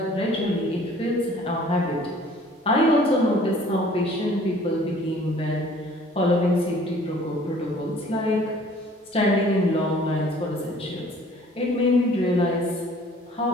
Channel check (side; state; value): both; normal; correlation 0.53